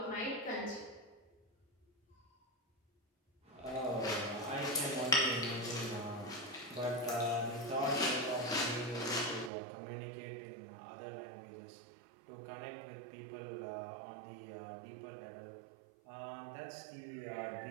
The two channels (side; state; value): left; drops out; at 9.5 s